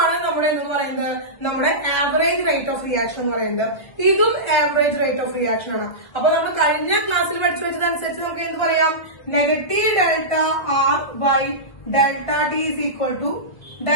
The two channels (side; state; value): right; late; 1.7 ms